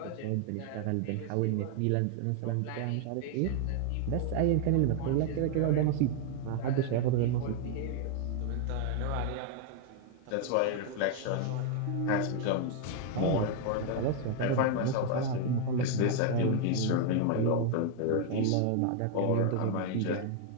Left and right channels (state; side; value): different; both; correlation 0.01